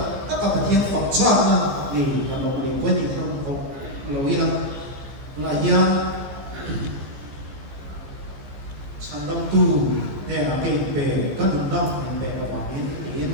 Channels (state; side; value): late; left; 15 ms